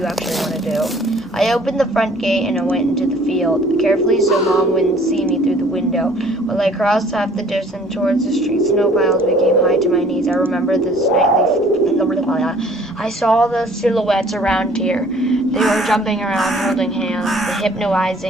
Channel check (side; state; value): both; normal; correlation 0.55